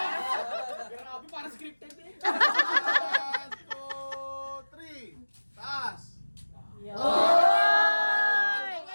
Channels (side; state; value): both; inverted; correlation -1.00